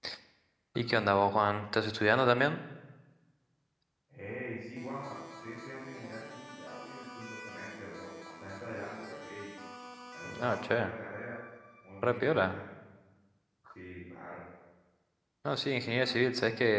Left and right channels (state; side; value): identical; both; correlation 1.00